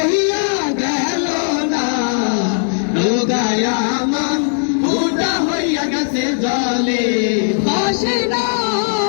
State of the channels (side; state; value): right; silent; 62 dB below the other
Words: গেল না। নৌকায় আমার ফুটা হইয়া গেছে জলে ভাসে না।